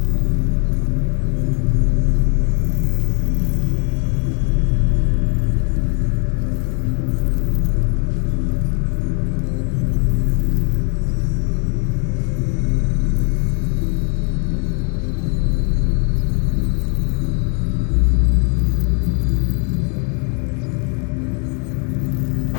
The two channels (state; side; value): quieter; right; 39.0 dB